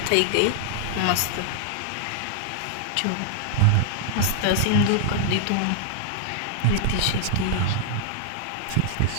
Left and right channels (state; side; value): different; both; correlation -0.01